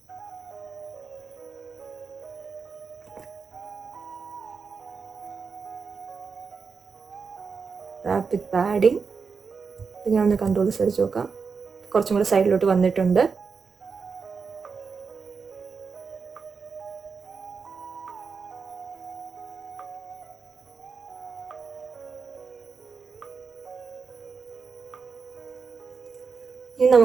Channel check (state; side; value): quieter; left; 5.3 dB